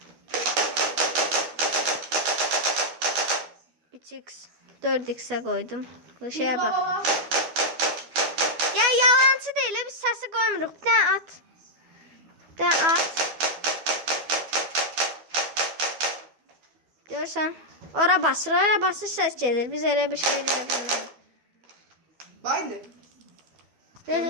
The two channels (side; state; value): left; late; 12 ms